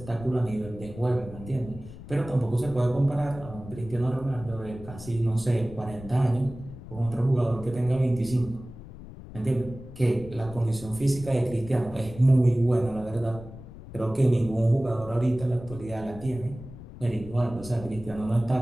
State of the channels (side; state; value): left; noise; rumble, 15 dB below the sound